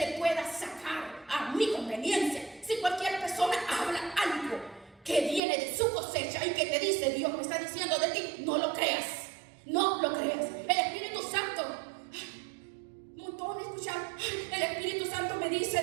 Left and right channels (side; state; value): left; drops out; at 5.4 s